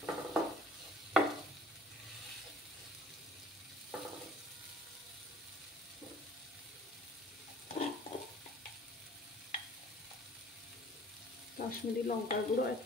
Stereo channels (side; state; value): both; normal; correlation 0.51